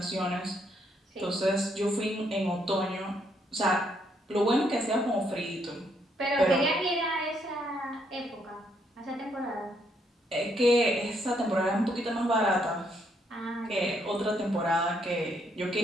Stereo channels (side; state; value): both; normal; correlation 0.73